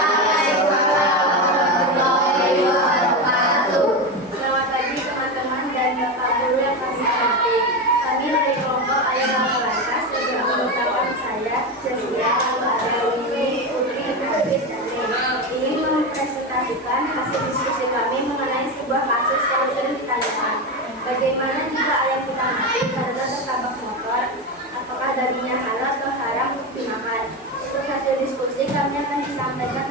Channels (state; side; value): normal; both; correlation 0.17